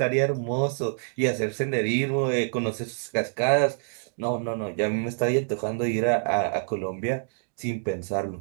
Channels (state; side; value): silent; left; digital silence